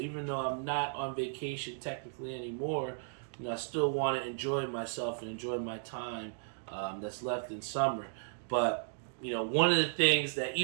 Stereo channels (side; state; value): left; silent; digital silence